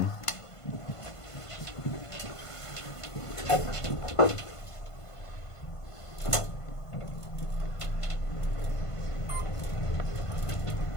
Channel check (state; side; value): late; right; 1.5 ms